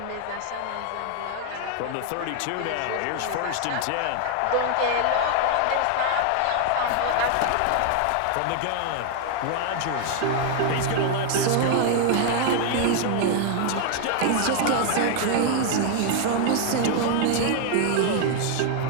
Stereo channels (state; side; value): different; both; correlation 0.00